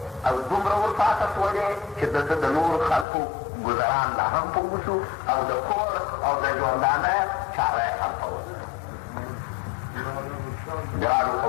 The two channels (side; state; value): right; drops out; at 3.1 s